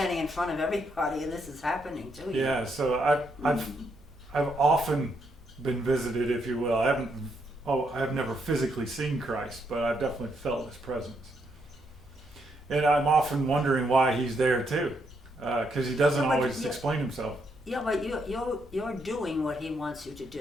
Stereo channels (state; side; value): normal; both; correlation 0.77